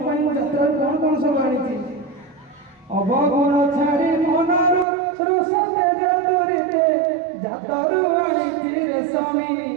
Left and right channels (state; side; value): drops out; left; at 4.9 s